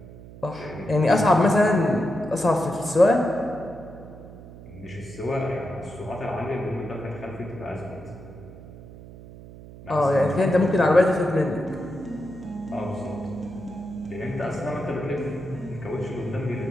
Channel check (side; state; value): right; noise; hum, 17 dB below the sound